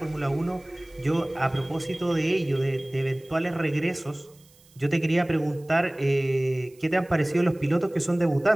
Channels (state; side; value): noise; right; hiss, 29 dB below the sound